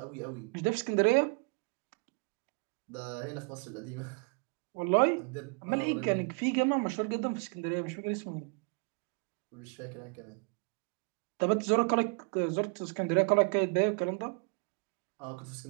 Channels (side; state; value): left; quieter; 34.4 dB